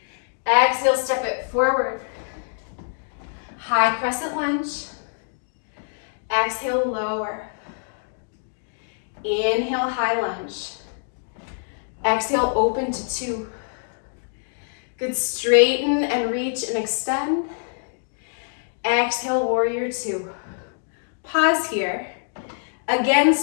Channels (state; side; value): silent; right; digital silence